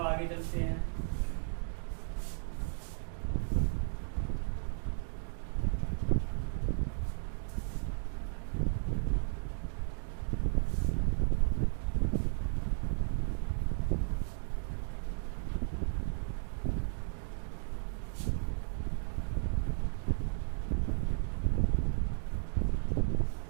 आगे चलते हैं।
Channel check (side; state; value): left; silent; digital silence